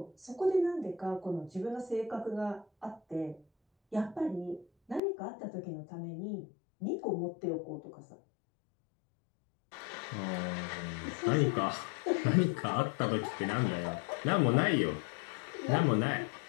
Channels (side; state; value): right; drops out; at 5.0 s